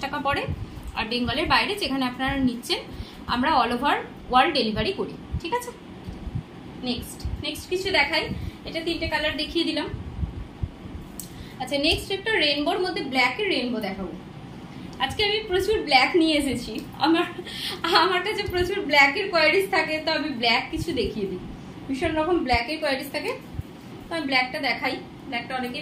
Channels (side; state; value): both; identical; correlation 1.00